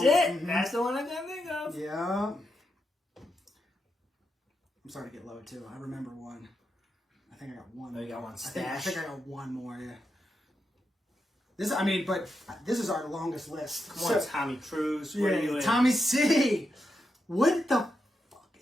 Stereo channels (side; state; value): both; normal; correlation 0.85